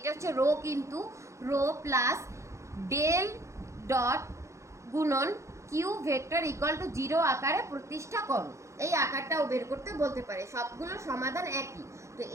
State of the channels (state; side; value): late; left; 0.14 ms